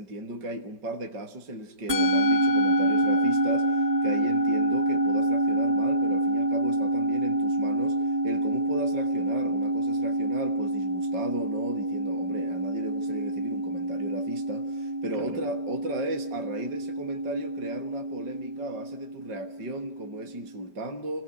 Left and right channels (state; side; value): late; left; 5.1 ms